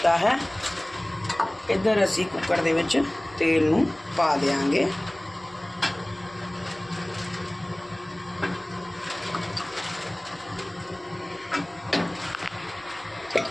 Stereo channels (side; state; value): left; noise; hum, 28 dB below the sound